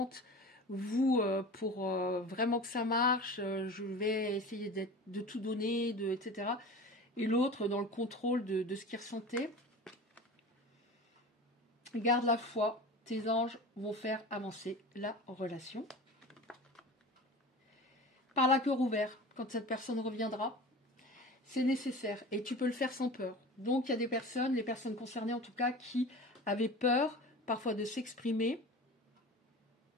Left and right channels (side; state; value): both; normal; correlation 0.35